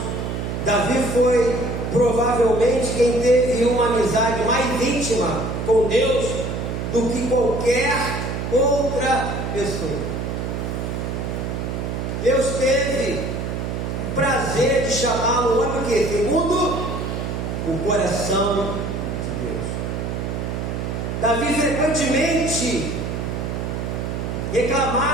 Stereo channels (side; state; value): right; noise; hum, 3 dB below the sound